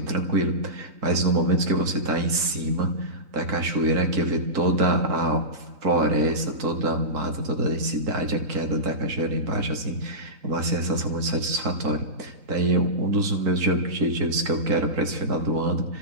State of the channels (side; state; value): left; late; 3.9 ms